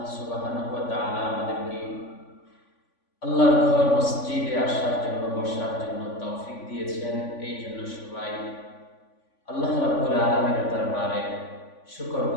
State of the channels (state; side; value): late; right; 3.5 ms